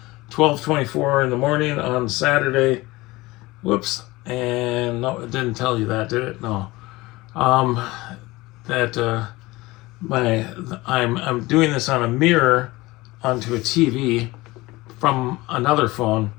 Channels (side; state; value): right; quieter; 20.6 dB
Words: 12:24 in the morning on Saturday. Whoops. And no, it didn't tell you that, did it? No. I'm doing this on a mirror onto a TV from another phone,